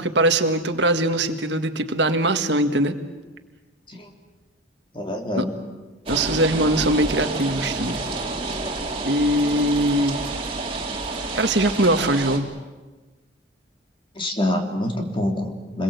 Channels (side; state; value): both; normal; correlation 0.27